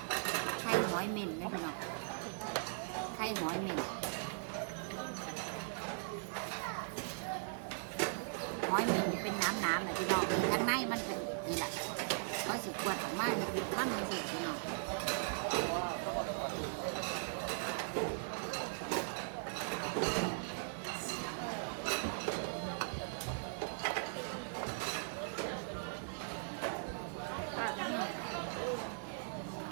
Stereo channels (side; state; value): left; silent; 52 dB below the other